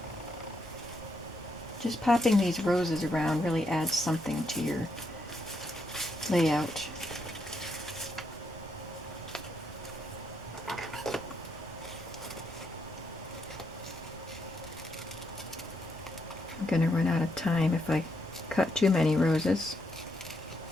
Just popping these roses around really adds something to your layout. I'm going to run out of time if I cut too many roses.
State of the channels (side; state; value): both; normal; correlation 0.79